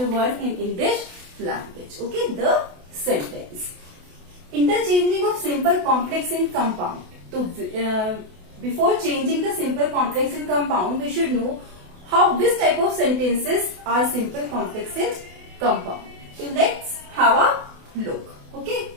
1 in English language. Okay, the sentence. Interchanging of simple complex in compound. So, before changing the simple complex in compound, we should know which type of sentences are simple complex in compound. So, let's have a look. Okay.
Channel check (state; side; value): late; left; 28 ms